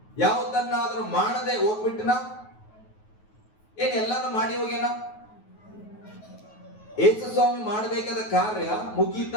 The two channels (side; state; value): right; late; 9.4 ms